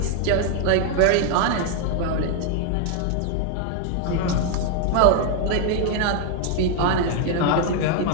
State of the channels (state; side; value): different; both; correlation 0.00